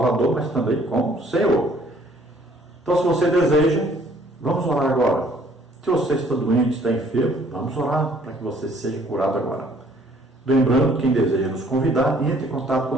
mas também como Senhor. Então se você deseja, vamos orar agora. Se você está doente, está enfermo, vamos orar para que você seja curado agora. Lembrando, quem deseja nos convidar, entre em contato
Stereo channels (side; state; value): both; normal; correlation 0.60